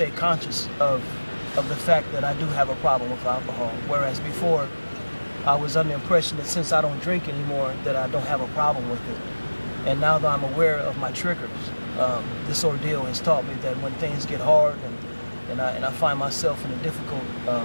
conscious of the fact that I do have a problem with alcohol, whereas before I was under the impression that since I don't drink anymore that I don't have a problem with it. And now that I'm aware of my triggers, this ordeal has taught me that when things get hard and I find myself in a difficult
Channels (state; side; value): inverted; both; correlation -1.00